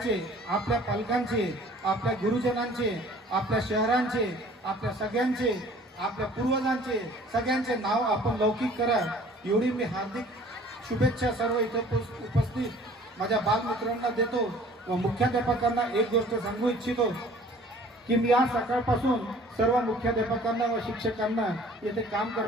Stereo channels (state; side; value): normal; both; correlation 0.51